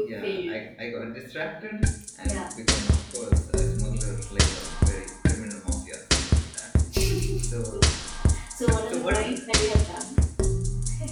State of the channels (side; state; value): both; identical; correlation 1.00